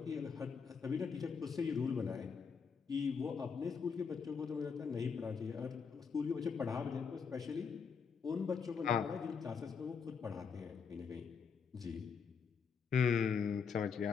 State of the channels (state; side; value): quieter; right; 6.0 dB